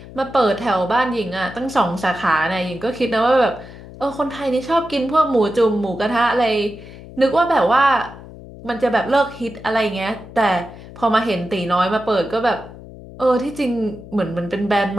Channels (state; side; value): noise; left; hum, 16 dB below the sound